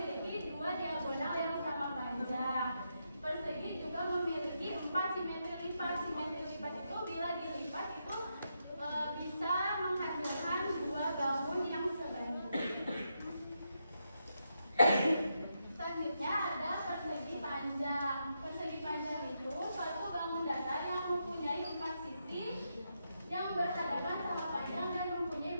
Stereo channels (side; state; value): both; inverted; correlation -0.83